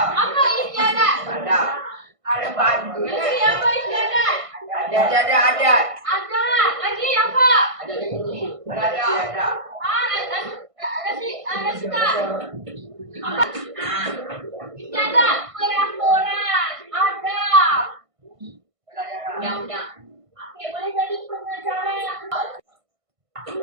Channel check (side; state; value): left; late; 1.5 ms